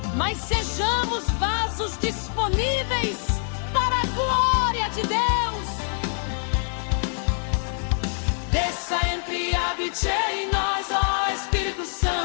mas sejamos vasos disponíveis para a glória de Deus. Desça, entre e habite em nós, ó Espírito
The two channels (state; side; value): silent; right; 61 dB below the other